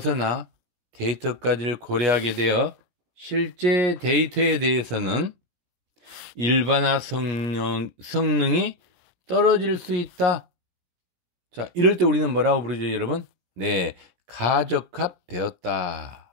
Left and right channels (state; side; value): late; left; 17 ms